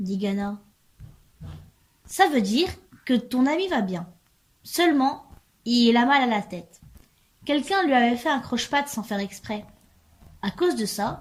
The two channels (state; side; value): identical; both; correlation 1.00